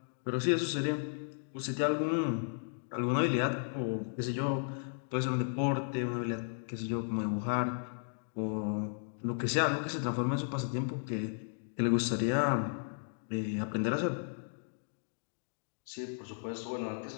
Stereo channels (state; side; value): silent; right; digital silence